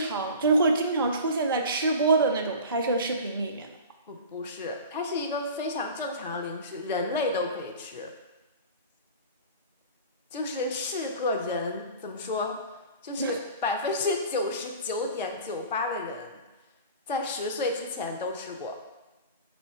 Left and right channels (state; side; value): inverted; both; correlation -0.38